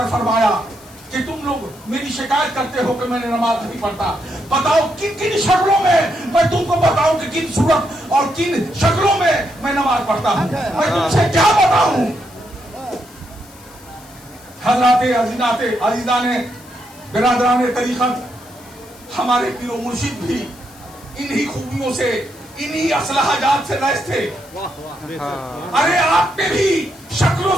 فرمایا کہ تم لوگ میری شکایت کرتے ہو کہ میں نے نماز نہیں پڑھتا، بتاؤ کن کن شکلوں میں تم کو بتاؤں کہ کن صورت اور کن شکلوں میں میں نماز پڑھتا ہوں، میں تم سے کیا بتاؤں. حضرات عزیزان برادران طریقت، ہمارے پیر و مرشد بھی انہی خوبیوں سے، انہی اصلاح جات سے لیس تھے. ارے آپ میں بھی شکل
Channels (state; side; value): noise; left; hiss, 23 dB below the sound